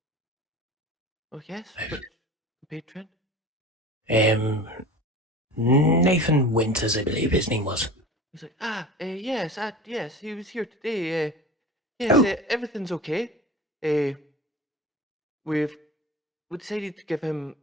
Oh, yes, which patron? Nathan Winters, I believe his name was. He's like, yes, he was here today. Yes, everything's okay. We decided to give him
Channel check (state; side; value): normal; both; correlation 0.36